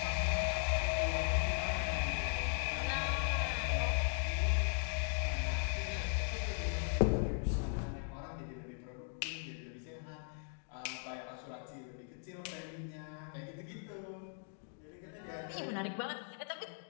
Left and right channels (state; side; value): silent; right; 52 dB below the other